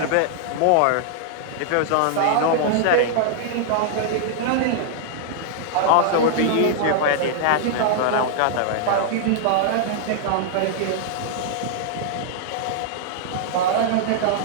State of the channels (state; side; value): different; both; correlation -0.01